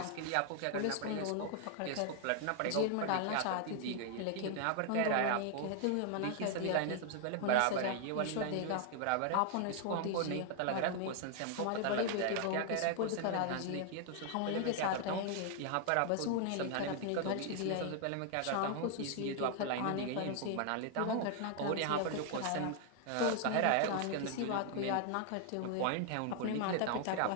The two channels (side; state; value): both; different; correlation 0.00